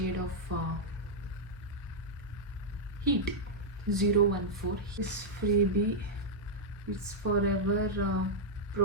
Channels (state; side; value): normal; both; correlation -0.06